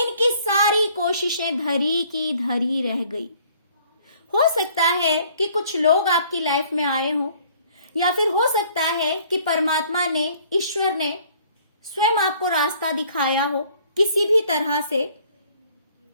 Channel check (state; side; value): inverted; both; correlation -0.58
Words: सारी कोशिशें धरी की धरी रह गई। हो सकता है कि कुछ लोग आपकी लाइफ में आए हो, या फिर हो सकता है कि परमात्मा ने, ईश्वर ने स्वयं आपको रास्ता दिखाया हो किसी भी तरह से।